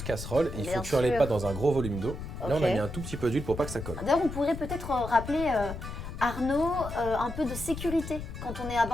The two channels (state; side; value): noise; left; rumble, 8 dB below the sound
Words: casserole. Il Bien faut cuire les sûr. pâtes dans un gros volume d'eau. Là, on a Ok. mis un tout petit peu d'huile pour pas que ça colle. D'ailleurs, on pourrait peut-être rappeler, Arnaud, un peu de sécurité quand on est à